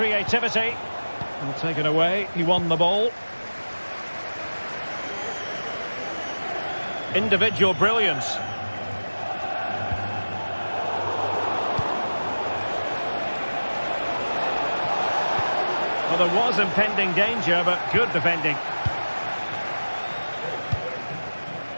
Well, taken away, he won the ball. Individual brilliance. Well, there was impending danger, but good defending.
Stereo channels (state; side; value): inverted; both; correlation -1.00